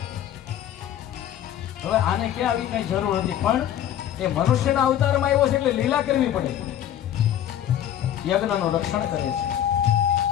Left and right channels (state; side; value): quieter; right; 10.9 dB